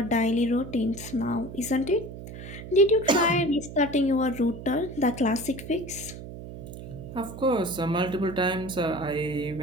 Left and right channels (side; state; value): right; noise; hum, 12 dB below the sound